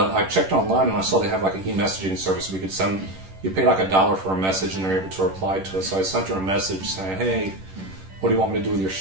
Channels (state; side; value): late; left; 11 ms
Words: I checked online and I saw they have like an e-messaging service we could send, you pay like $1 for a message and they're able to reply to us. So I sent her a message saying, hey, what do you want me to do with your